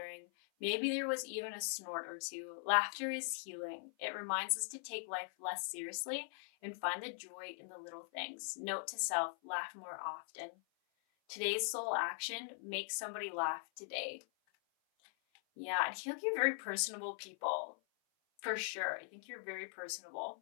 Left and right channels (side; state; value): right; silent; 50 dB below the other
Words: Maybe there was even a snort or two. Laughter is healing. It reminds us to take life less seriously and find the joy in the little things. Note to self, laugh more often. Today's soul action, make somebody laugh today. Yeah, I feel like you're very personable people. For sure. I think you're very personable.